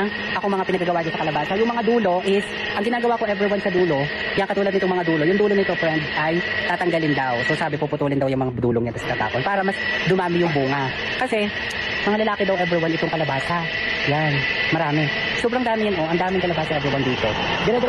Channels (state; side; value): identical; both; correlation 1.00